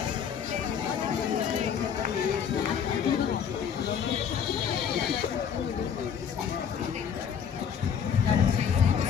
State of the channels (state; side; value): quieter; right; 7.7 dB